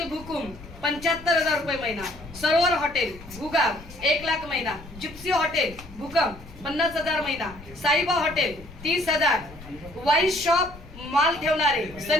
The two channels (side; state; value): left; noise; rumble, 18 dB below the sound